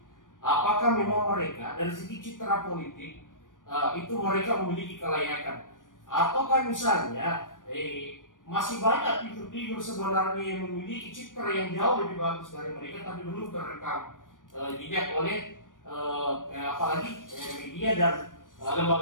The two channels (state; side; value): late; right; 0.88 ms